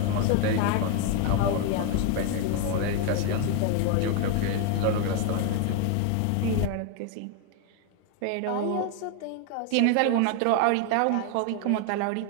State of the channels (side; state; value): both; different; correlation 0.01